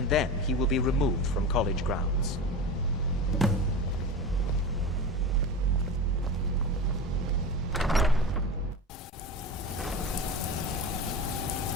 then he will be removed from college grounds.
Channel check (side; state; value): both; normal; correlation 0.27